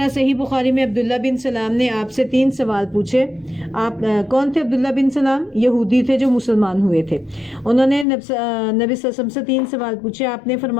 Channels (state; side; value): drops out; right; at 8.1 s